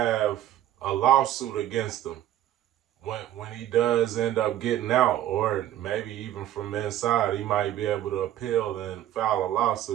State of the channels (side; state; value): left; quieter; 12.4 dB